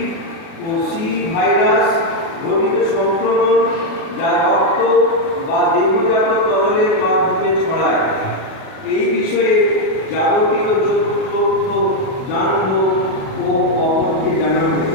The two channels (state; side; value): late; right; 37 ms